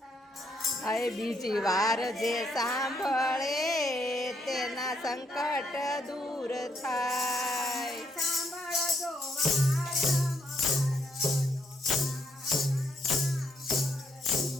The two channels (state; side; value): normal; both; correlation 0.73